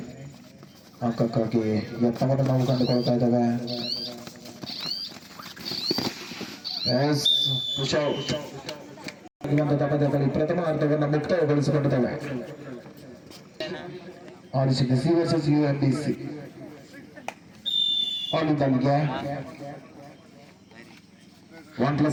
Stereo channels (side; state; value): both; identical; correlation 1.00